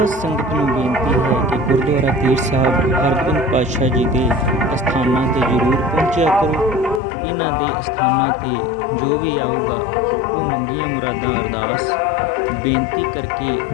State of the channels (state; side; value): drops out; right; at 7.0 s